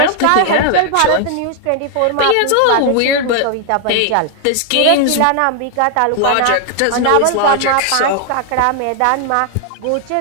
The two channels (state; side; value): different; both; correlation 0.00